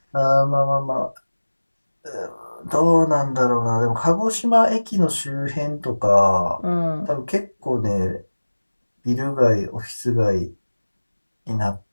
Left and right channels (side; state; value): both; inverted; correlation -1.00